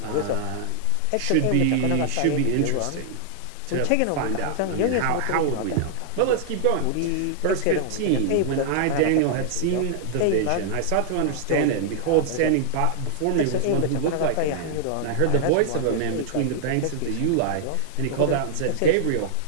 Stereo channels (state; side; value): different; both; correlation -0.01